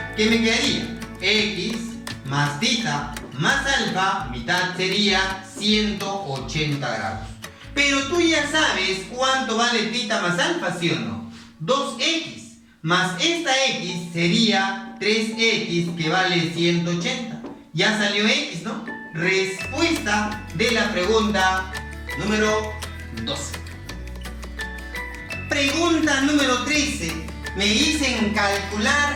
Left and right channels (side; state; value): both; identical; correlation 1.00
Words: ¿Qué me quedaría? X más θ más alfa, mitad sería 180 grados. Pero tú ya sabes cuánto vale θ más alfa, ¿sí o no? 2x más esta x sería 3x que vale 180. Ya salió x, ¿no? Respuesta de la pregunta número 12. Pregunta número 13. Me dicen